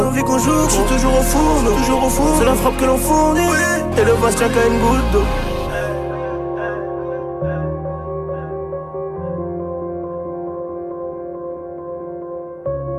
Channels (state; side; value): identical; both; correlation 1.00